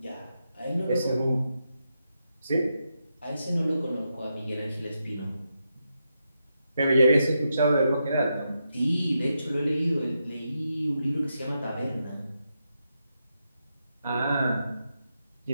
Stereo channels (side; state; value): both; inverted; correlation -0.85